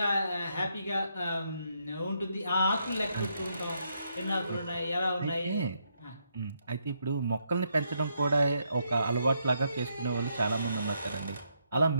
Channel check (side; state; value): both; inverted; correlation -0.77